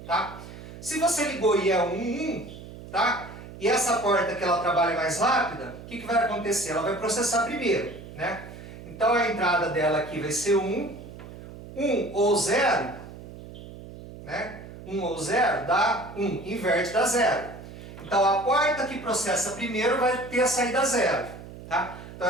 tá? Se você ligou e é o 1, tá? E essa porta que ela trabalha mais rápida, o que vai acontecer? Ela vai processar primeiro, né? Então a entrada dela aqui vai ser 1, 1 ou 0, né? 1 ou 0 dá 1, inverte dá 0. Então a porta que processa primeiro vai ter a saída 0, tá? Então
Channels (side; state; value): right; noise; hum, 14 dB below the sound